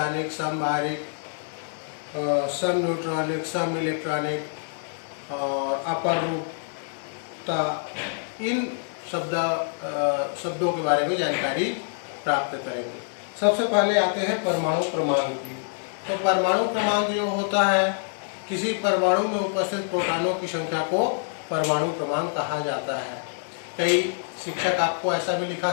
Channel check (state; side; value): silent; right; digital silence